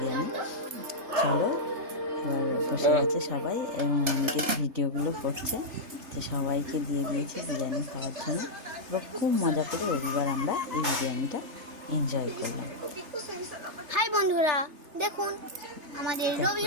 চলো, এবার বসে গেছে সবাই এবং অনেকে ভিডিওগুলো করছে, তো সবাইকে দিয়ে দিয়েছি বিরিয়ানি খাওয়ার জন্য। এবার খুব মজা করে রবিবার আমরা এই বিরিয়ানিটা এনজয় করলাম। হাই বন্ধুরা, দেখুন আমাদের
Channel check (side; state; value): left; late; 3.3 ms